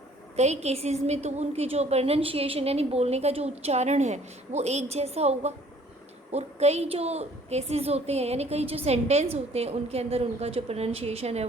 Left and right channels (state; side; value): normal; both; correlation 0.56